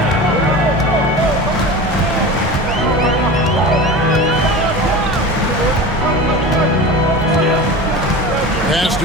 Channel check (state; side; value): normal; both; correlation 0.31